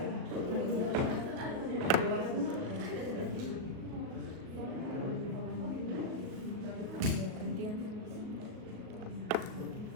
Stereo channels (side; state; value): left; late; 37 ms